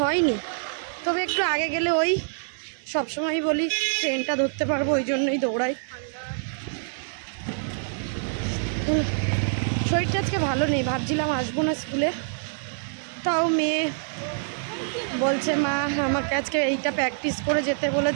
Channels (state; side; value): silent; left; 61 dB below the other